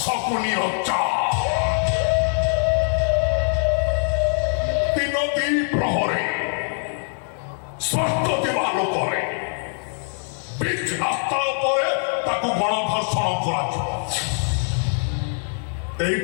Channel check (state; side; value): silent; right; 62 dB below the other